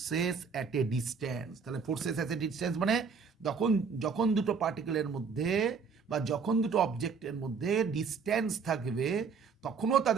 at a distance. তাহলে forces at a distance মানে যখন দুটো পার্টিকেলের মধ্যে বা যখন দুটো অবজেক্টের মধ্যে ডিস্ট্যান্স থাকবে, তখনও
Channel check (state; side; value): quieter; left; 5.6 dB